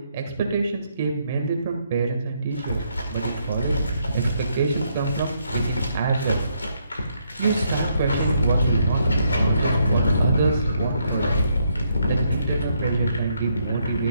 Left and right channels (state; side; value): inverted; both; correlation -0.74